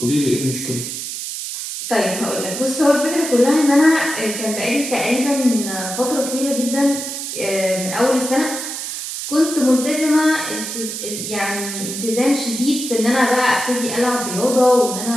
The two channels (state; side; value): noise; right; hiss, 6 dB below the sound